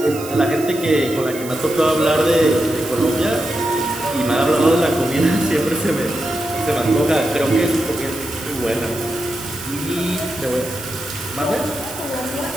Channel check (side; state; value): right; noise; hiss, 14 dB below the sound